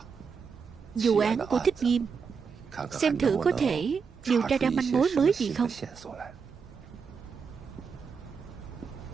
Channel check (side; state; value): left; quieter; 5.8 dB